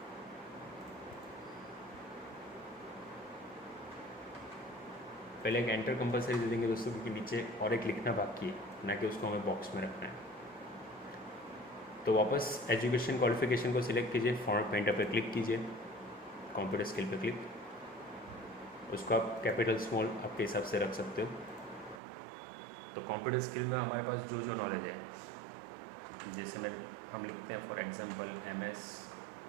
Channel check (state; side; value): drops out; left; at 22.0 s